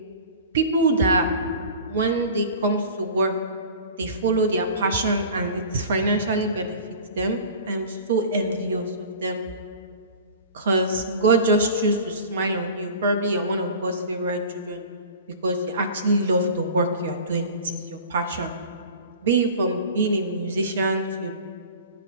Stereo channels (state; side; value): inverted; both; correlation -0.39